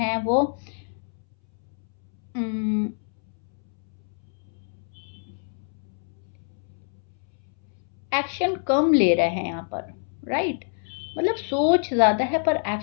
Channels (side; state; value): right; silent; 61 dB below the other